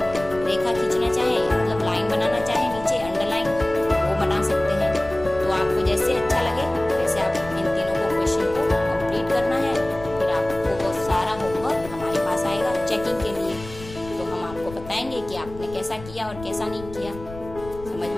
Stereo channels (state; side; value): noise; left; rumble, 15 dB below the sound